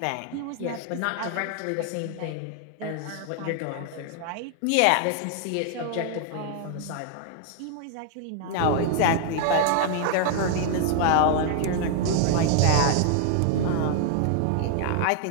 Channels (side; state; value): both; different; correlation 0.00